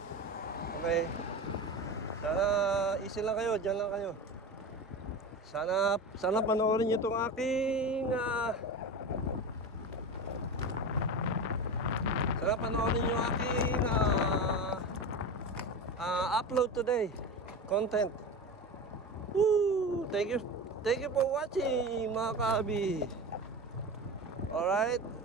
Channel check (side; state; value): both; normal; correlation 0.26